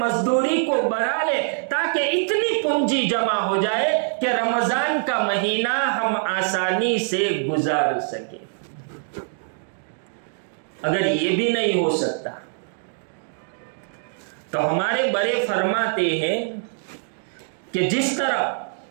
کو بڑھا لے تاکہ اتنی پونجی جمع ہو جائے کہ رمضان کا مہینہ ہم آسانی سے گزار سکیں۔ اگر یہ بھی نہیں ہو سکتا تو ہمارے بڑے فرماتے ہیں کہ جس طرح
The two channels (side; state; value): left; silent; 61 dB below the other